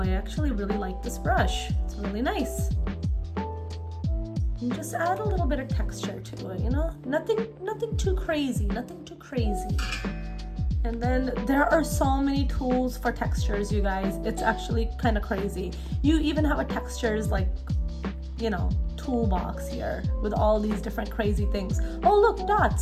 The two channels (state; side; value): identical; both; correlation 1.00